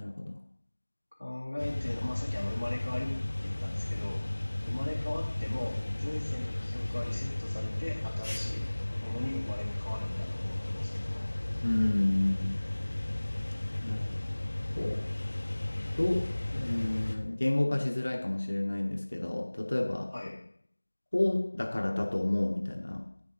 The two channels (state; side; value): inverted; both; correlation -1.00